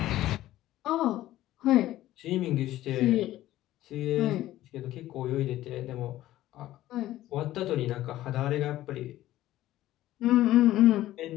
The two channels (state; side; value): quieter; right; 14.7 dB